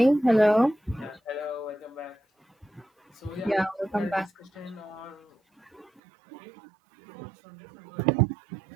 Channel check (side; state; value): left; drops out; at 6.0 s